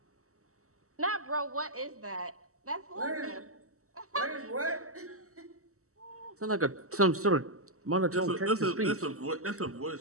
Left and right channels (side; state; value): left; late; 0.64 ms